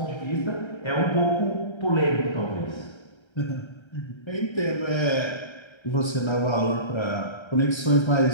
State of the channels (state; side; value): late; right; 1.3 ms